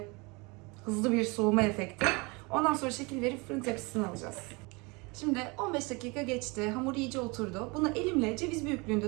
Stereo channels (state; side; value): quieter; left; 27.4 dB